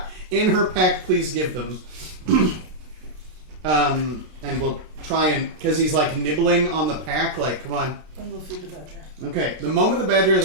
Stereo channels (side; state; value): left; late; 33 ms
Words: in her pack. Please give them. And we'll try and, because he's like nibbling on the pack, like, come on. And we'll feed the badger. Okay, the moment the badger has